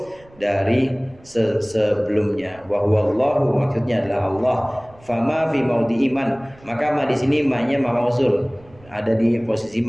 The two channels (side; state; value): right; noise; rumble, 26 dB below the sound